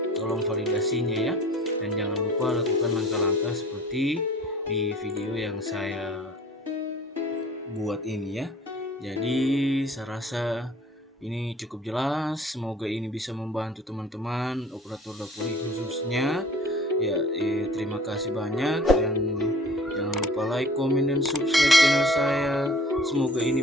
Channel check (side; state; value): both; normal; correlation 0.49